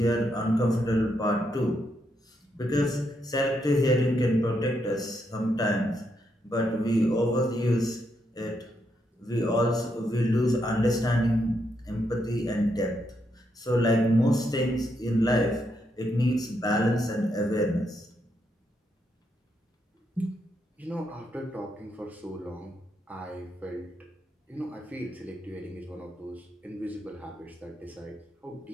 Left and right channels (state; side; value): normal; both; correlation 0.79